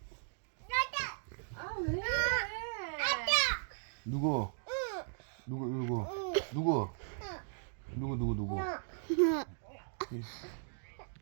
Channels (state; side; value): silent; left; digital silence